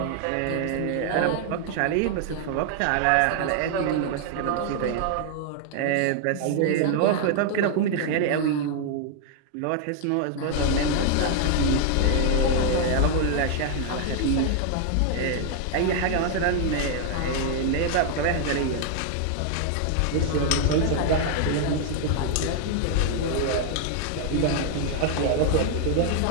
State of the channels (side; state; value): both; different; correlation 0.00